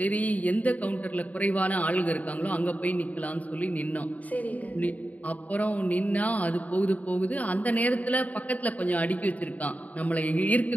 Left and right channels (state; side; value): late; right; 0.073 ms